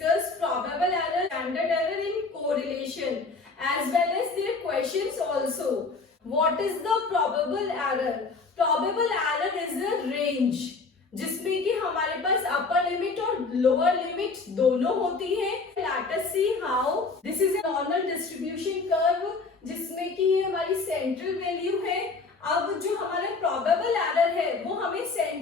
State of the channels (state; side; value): quieter; right; 4.2 dB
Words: discuss probable error, standard error in correlation as well as their questions also. What is the probable error? Probable error is a range जिसमें कि हमारे पास upper limit और lower limit दोनों होती है. Let us see how. This is a normal distribution curve जिसमें कि ये हमारी सेंट्रल वैल्यू है. अब जो हमारा प्रोबेबल एरर है वो हमें